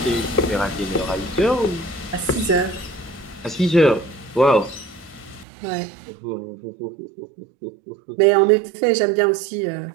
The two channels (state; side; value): drops out; left; at 5.5 s